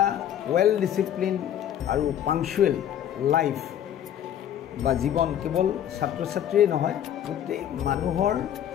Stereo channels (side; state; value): right; quieter; 10.4 dB